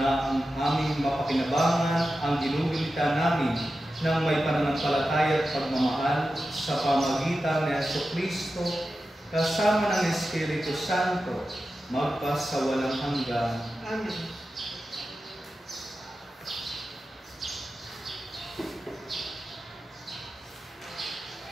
ang aming mapakinabangan ang ginugulita namin ng may pananampalataya at pagmamahal sa pamagitan ni Jesucristo kasama ng Espiritu Santo magpas sa walang hanggan. Amen.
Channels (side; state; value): both; normal; correlation 0.92